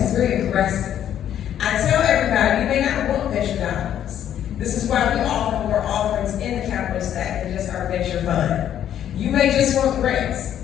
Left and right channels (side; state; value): right; quieter; 10.4 dB